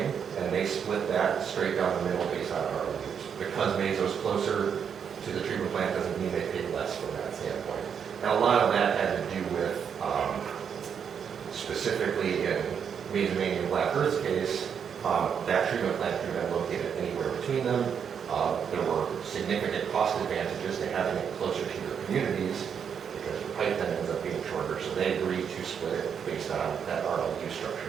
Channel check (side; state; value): left; quieter; 7.4 dB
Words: and they split that straight down the middle based on RLUs. Because Mazo's closer to the treatment plant doesn't mean they pay less from that standpoint. Now, a lot of that had to do with, specifically in Mazomania and Black Earth's case, that treatment plant could have been located anywhere between them. There were significant cost advantages to having it closer to your communities because the pipe then ends up being shorter. So they agreed to split it based on that RLU